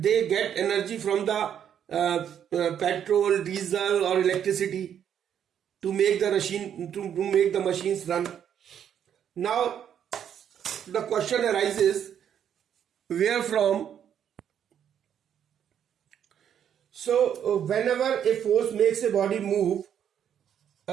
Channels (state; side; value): quieter; left; 9.1 dB